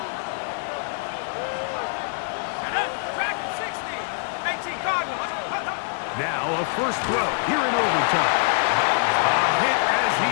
Now a first throw here in overtime. A hit as he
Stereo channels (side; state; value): right; silent; 62 dB below the other